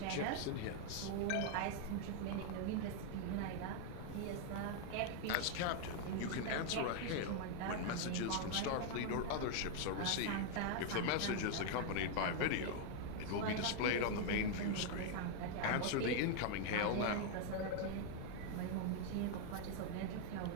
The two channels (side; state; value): both; different; correlation 0.00